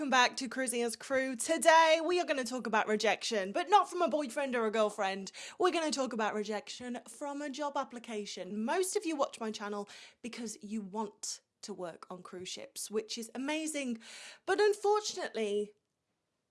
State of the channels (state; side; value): identical; both; correlation 1.00